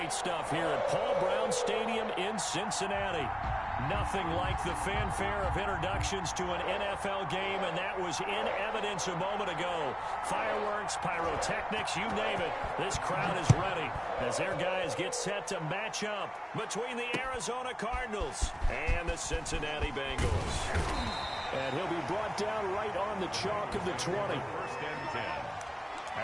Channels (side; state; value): both; identical; correlation 1.00